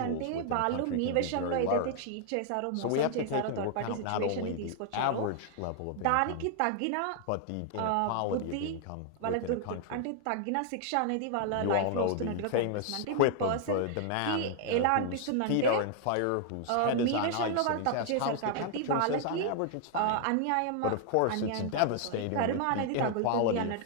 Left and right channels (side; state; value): both; different; correlation 0.00